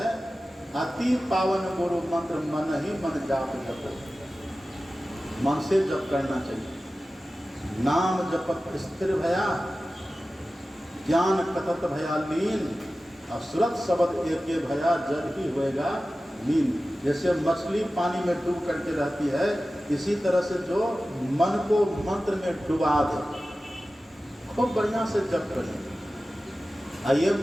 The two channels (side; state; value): both; normal; correlation 0.95